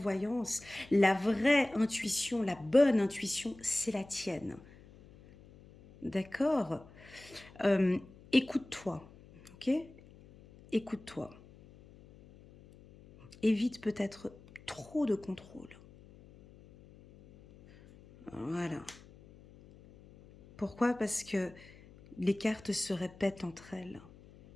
la vraie intuition, la bonne intuition, c'est la tienne. D'accord? Écoute-toi, ok? Écoute-toi. Évite peut-être trop de contrôle. Voilà. Pourquoi? Parce que les cartes se répètent entre elles.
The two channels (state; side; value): noise; left; hum, 22 dB below the sound